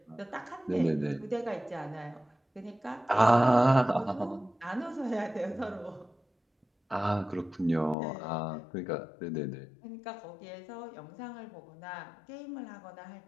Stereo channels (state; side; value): drops out; right; at 8.0 s